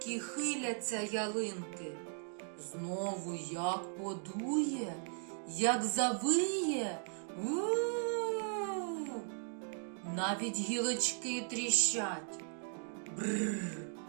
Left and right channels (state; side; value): silent; left; 53 dB below the other